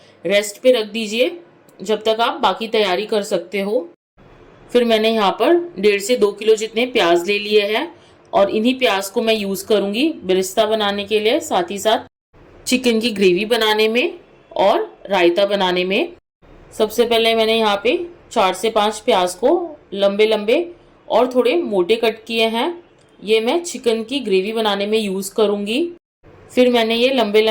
रेस्ट पे रख दीजिए, जब तक आप बाकी तैयारी कर सकते हो। फिर मैंने यहाँ पर 1.5 से 2 किलो जितने प्याज ले लिए हैं और इन्हीं प्याज को मैं यूज़ करूँगी बिरिस्ता बनाने के लिए, साथ ही साथ चिकन की ग्रेवी बनाने में और रायता बनाने में। सबसे पहले मैंने यहाँ पे 4 से 5 प्याज को लंबे लंबे और थोड़े मोटे कट किए हैं। ये मैं चिकन की ग्रेवी बनाने में यूज़ करूँगी। फिर मैंने ये लंबे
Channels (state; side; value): identical; both; correlation 1.00